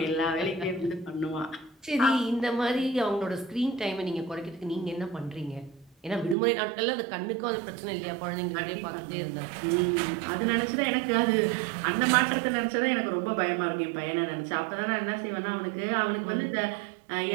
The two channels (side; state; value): left; drops out; at 6.4 s